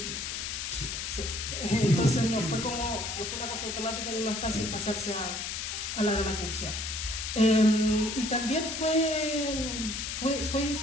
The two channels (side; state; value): left; noise; hiss, 4 dB below the sound